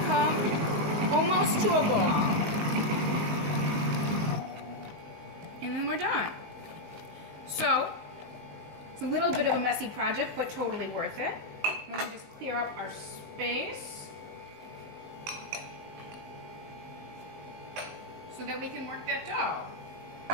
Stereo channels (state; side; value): late; left; 19 ms